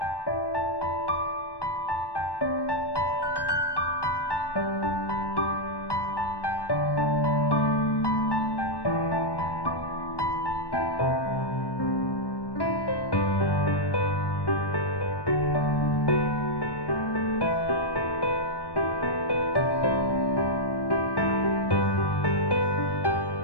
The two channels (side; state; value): right; late; 1.1 ms